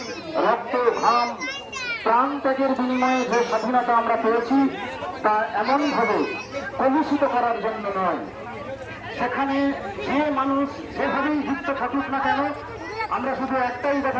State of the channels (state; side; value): identical; both; correlation 1.00